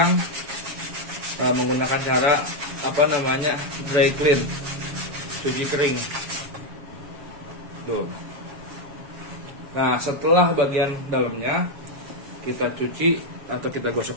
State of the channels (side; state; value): left; late; 7.3 ms